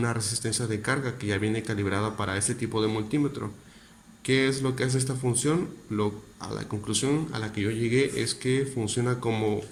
resistencia de carga que ya viene calibrada para este tipo de multímetro. ¿Qué es lo que hace esta función? A la conclusión a la que yo llegué es que funciona como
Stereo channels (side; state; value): both; identical; correlation 1.00